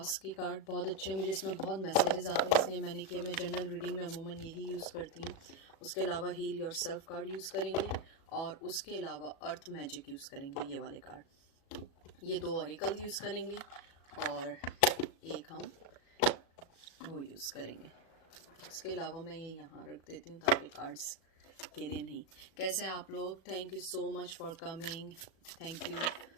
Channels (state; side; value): late; right; 37 ms